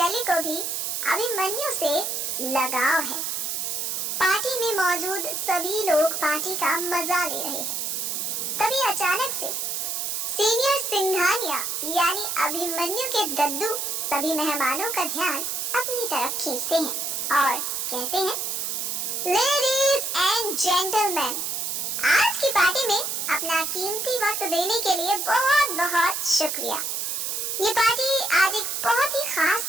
को भी अभिमन्यु से लगाव है। पार्टी में मौजूद सभी लोग पार्टी का मजा ले रहे हैं। तभी अचानक से सीनियर सिंघानिया यानी अभिमन्यु के दद्दू सभी मेहमानों का ध्यान अपनी तरफ खींचते हैं और कहते हैं, लेडीज एंड जेंटलमैन, आज की पार्टी में अपना कीमती वक्त देने के लिए बहुत बहुत शुक्रिया। ये पार्टी आज एक बहुत ही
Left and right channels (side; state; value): right; noise; hiss, 2 dB below the sound